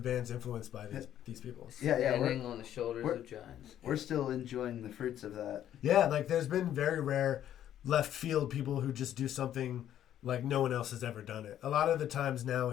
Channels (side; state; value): right; quieter; 11.1 dB